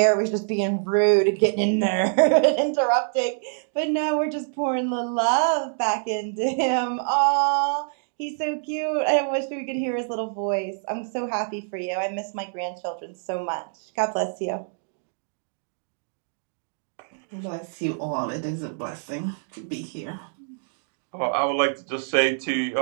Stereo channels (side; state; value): left; silent; digital silence